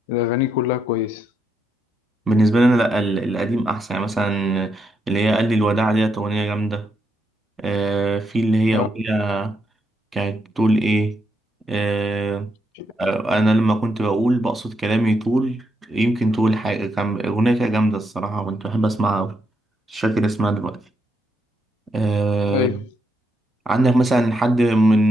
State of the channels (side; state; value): both; normal; correlation 0.80